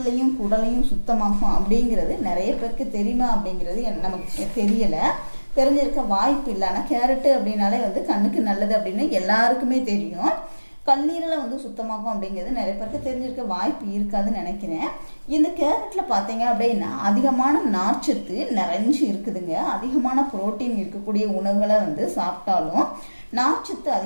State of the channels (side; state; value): both; inverted; correlation -1.00